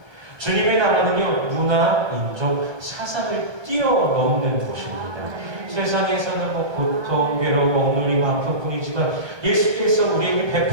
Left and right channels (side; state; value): left; late; 1.2 ms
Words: 주님의 나라는요, 문화, 민족, 사상을 뛰어넘는 곳입니다. 세상에서는 고통, 괴로움, 억눌림, 아픔뿐이지만 예수께서 우리에게